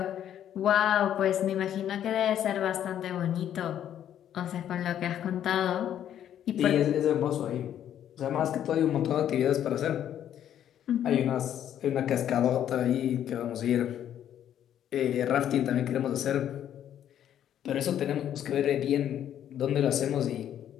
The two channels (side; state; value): right; quieter; 10.4 dB